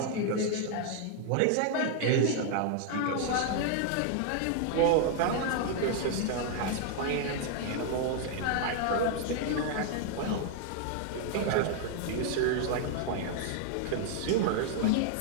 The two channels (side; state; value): both; different; correlation 0.00